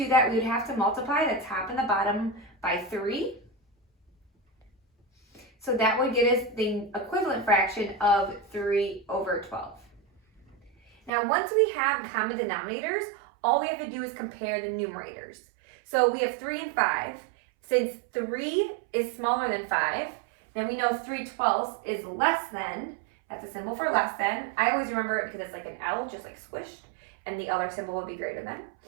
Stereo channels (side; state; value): left; drops out; at 11.1 s